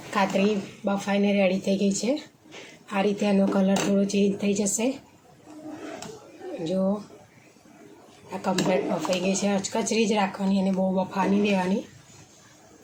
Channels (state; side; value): identical; both; correlation 1.00